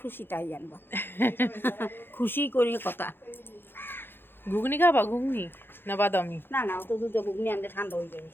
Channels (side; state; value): right; late; 0.10 ms